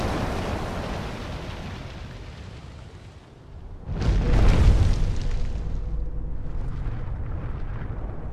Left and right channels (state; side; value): identical; both; correlation 1.00